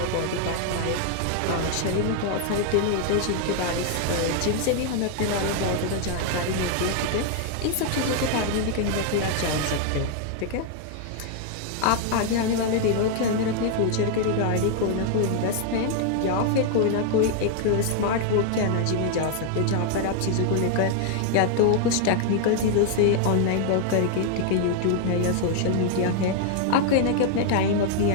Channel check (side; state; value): both; different; correlation 0.00